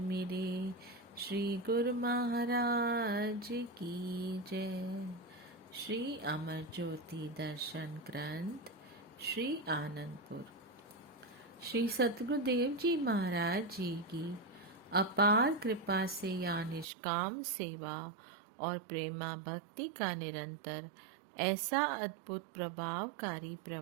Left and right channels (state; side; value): drops out; left; at 16.9 s